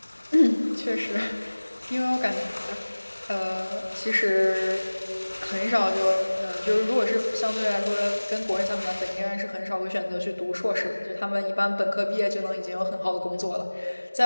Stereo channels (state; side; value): inverted; both; correlation -1.00